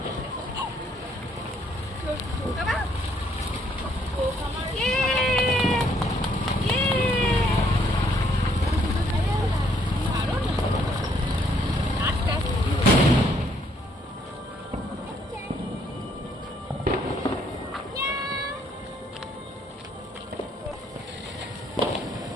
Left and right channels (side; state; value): both; normal; correlation 0.68